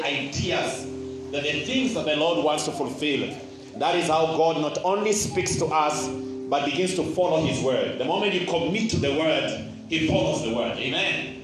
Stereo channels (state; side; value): identical; both; correlation 1.00